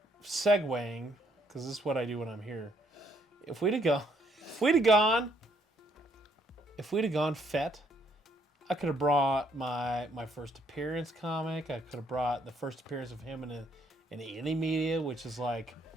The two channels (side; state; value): both; normal; correlation 0.69